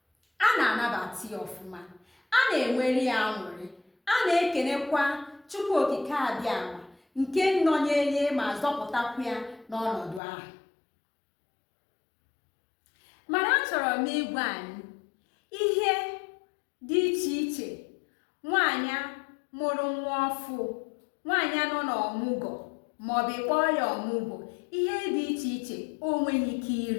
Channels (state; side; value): drops out; right; at 10.2 s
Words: A na-anabata ya ọfụma, a na-enwere ya aṅụrị, a na-ekenekwa Chukwu Okike Abịama nke nọnyere ma zọpụtakwa ya n'ọnọdụ ahụ. Mana achọrọ m ịgwa anyị ihe dị iche iche nwaanyị mụrụ nwa ọfụ, nwaanyị nọ n'ọmụgwọ maọbụ kpọọ ya ọmụgwọ, ihe dị iche iche o nweghị ike